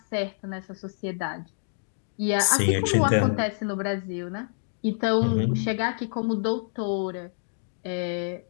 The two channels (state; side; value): silent; right; digital silence